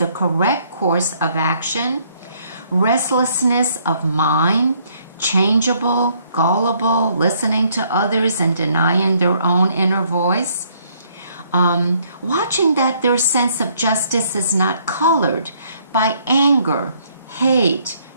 correct course of action, restlessness of mind, changeable, gullible, listening to others and denying their own inner voice, watching that their sense of justice is not colored by anger, hate,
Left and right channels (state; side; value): inverted; both; correlation -0.66